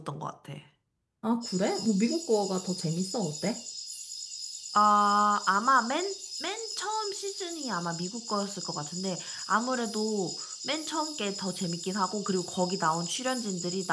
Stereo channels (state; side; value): identical; both; correlation 1.00